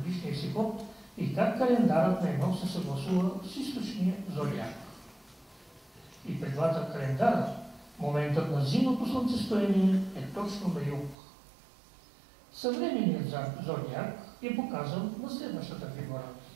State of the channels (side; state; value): left; drops out; at 11.2 s